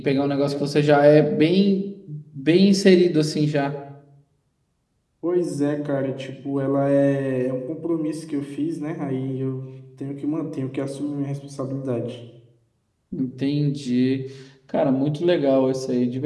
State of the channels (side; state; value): both; identical; correlation 1.00